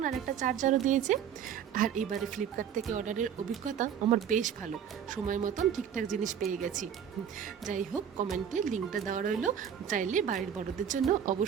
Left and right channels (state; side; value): quieter; left; 8.5 dB